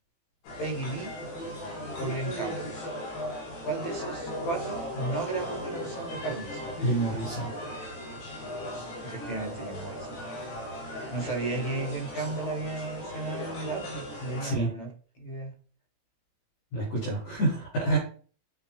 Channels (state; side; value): late; right; 18 ms